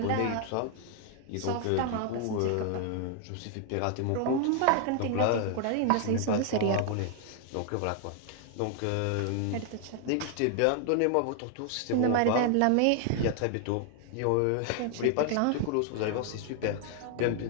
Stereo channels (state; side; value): different; both; correlation 0.00